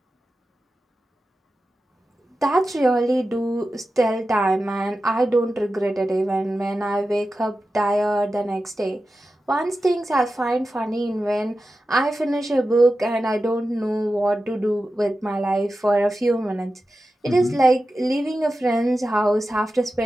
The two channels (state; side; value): normal; both; correlation 0.93